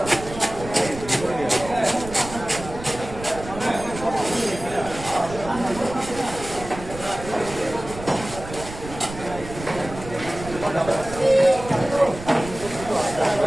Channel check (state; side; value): noise; right; rumble, 12 dB below the sound